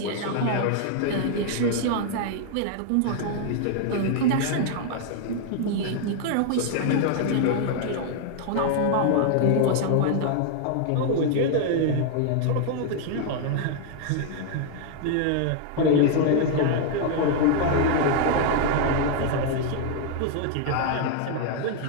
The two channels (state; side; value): different; both; correlation 0.00